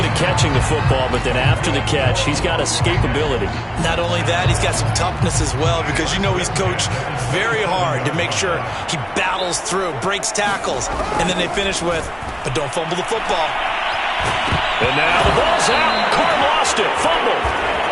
at catching the football, but then after the catch, he's got escapability. Not only that, he's got some toughness as well, because you know he's coached very hard to make sure he battles through, breaks tackles, and then they finish with, but don't fumble the football. And now the ball's out. Carr lost it. Fumble.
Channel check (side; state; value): both; identical; correlation 1.00